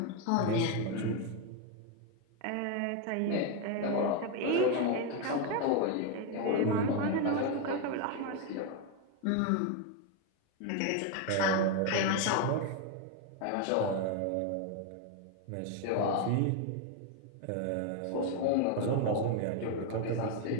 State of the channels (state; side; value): different; both; correlation 0.01